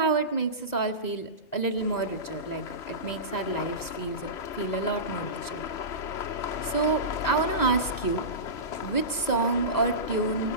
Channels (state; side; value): late; right; 2.0 ms